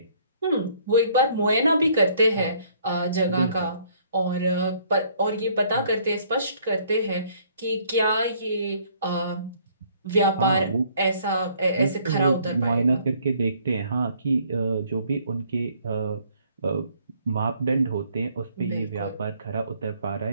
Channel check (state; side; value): inverted; both; correlation -0.62